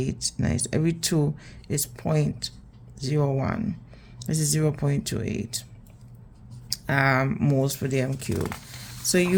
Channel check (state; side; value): identical; both; correlation 1.00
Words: 9. Every 2 is 0.01. This is 0.28 moles per dm cube. So